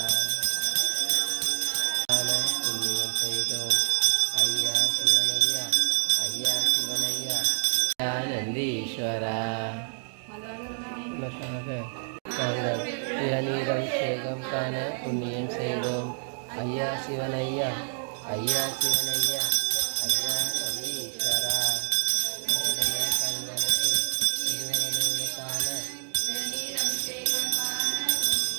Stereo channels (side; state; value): left; silent; digital silence